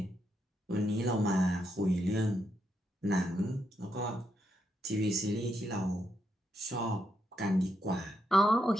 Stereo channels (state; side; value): normal; both; correlation 0.80